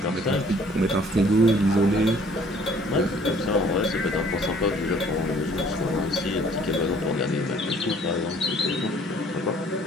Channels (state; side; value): normal; both; correlation 0.57